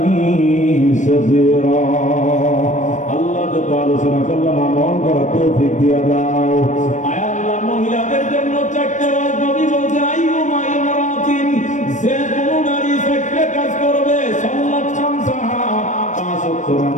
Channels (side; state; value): right; late; 0.35 ms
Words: সগীরা। আল্লাহ যত আলোচনা করলাম আমল করার তৌফিক দিয়া দাও। আয় আল্লাহ, মহিলাদের জন্য চারটি রাত নবী বলছে আইয়ুমা ইমরাতিন, যে কোনো নারী চারটি কাজ করবে, সাল্লাত খামসাহা, পাঁচ ওয়াক্ত